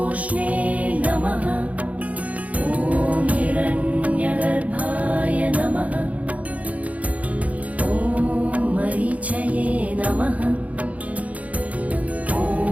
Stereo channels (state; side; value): late; left; 0.069 ms